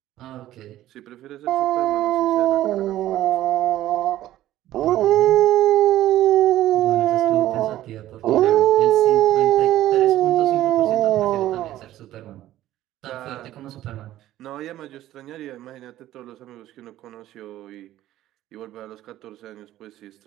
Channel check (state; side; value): quieter; left; 14.0 dB